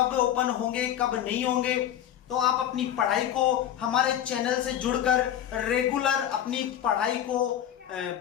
ओपन होंगे कब नहीं होंगे। तो आप अपनी पढ़ाई को हमारे चैनल से जुड़कर रेगुलर अपनी पढ़ाई को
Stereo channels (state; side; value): quieter; right; 10.7 dB